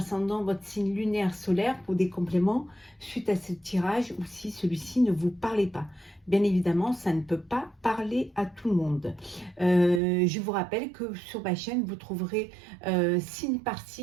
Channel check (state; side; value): drops out; left; at 10.0 s